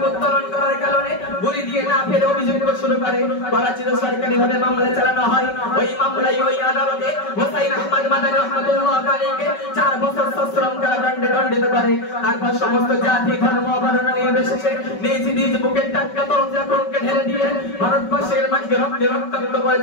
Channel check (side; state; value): right; late; 5.3 ms